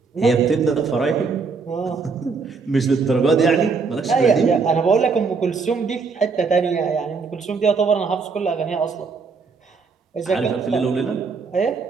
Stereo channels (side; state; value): left; quieter; 4.8 dB